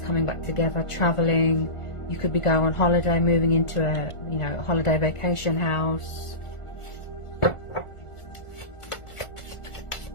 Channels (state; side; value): late; right; 1.5 ms